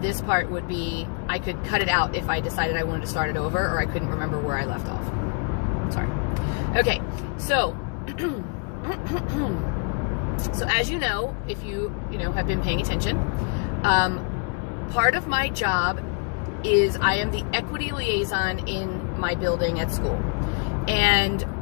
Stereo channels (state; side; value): quieter; right; 37.4 dB